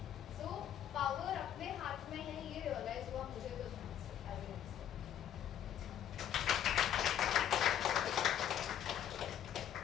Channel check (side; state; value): right; quieter; 10.1 dB